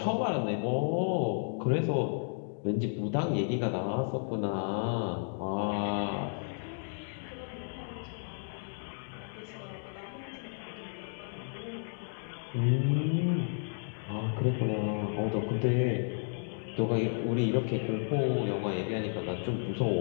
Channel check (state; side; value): silent; right; 56 dB below the other